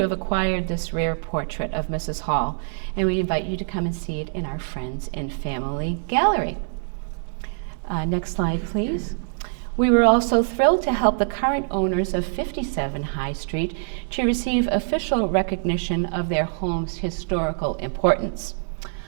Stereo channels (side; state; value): left; silent; digital silence